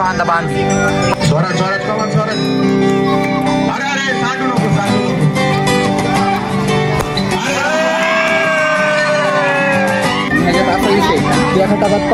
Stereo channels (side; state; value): both; identical; correlation 1.00